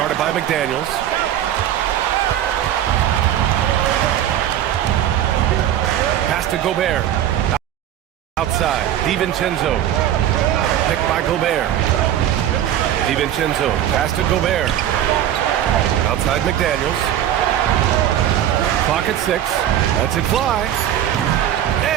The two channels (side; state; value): left; quieter; 11.1 dB